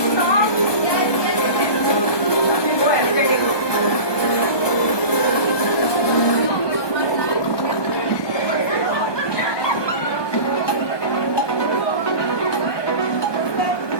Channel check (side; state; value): right; late; 1.2 ms